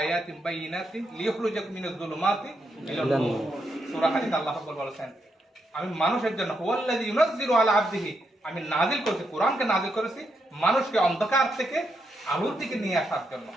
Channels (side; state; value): both; normal; correlation 0.81